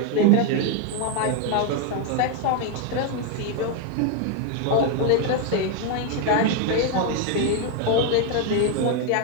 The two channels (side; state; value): both; different; correlation 0.01